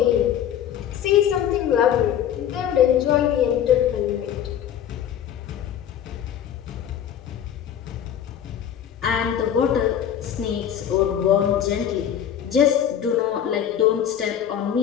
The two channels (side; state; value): right; quieter; 9.7 dB